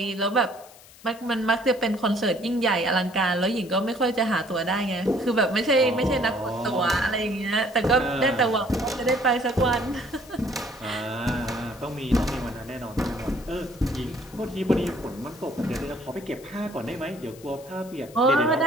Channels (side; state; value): left; noise; hiss, 22 dB below the sound